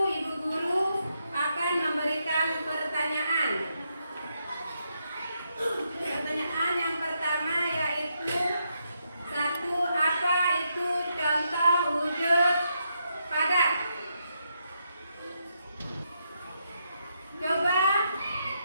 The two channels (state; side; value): inverted; both; correlation -0.80